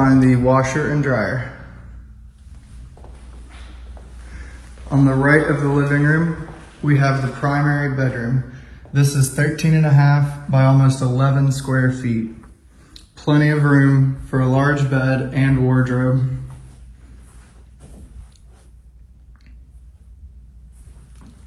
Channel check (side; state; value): both; identical; correlation 1.00